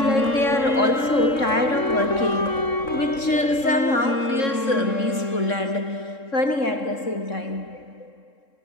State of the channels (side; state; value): right; late; 3.7 ms